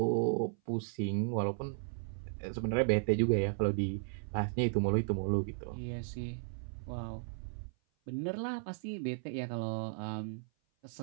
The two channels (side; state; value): left; silent; 54 dB below the other